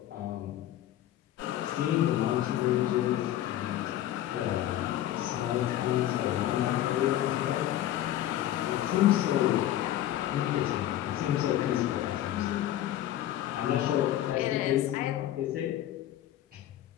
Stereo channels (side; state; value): right; quieter; 12.9 dB